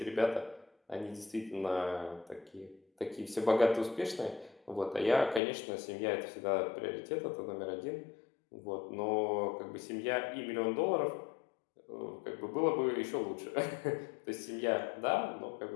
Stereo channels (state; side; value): drops out; right; at 5.4 s